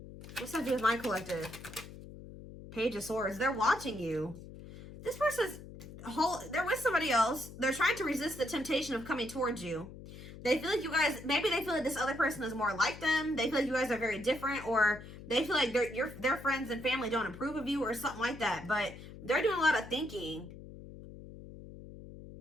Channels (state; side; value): noise; left; hum, 14 dB below the sound